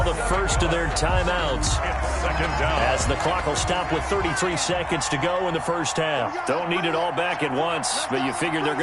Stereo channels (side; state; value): both; identical; correlation 1.00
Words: the first of their timeouts. As the clock will stop with 33 seconds to go in the first half. Don't need it all back at once, but you figure they're